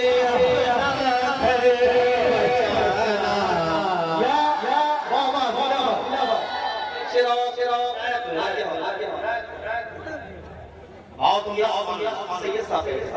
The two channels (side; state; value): both; identical; correlation 1.00